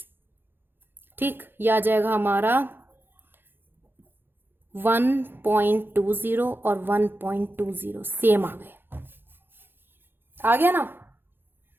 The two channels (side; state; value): left; late; 0.10 ms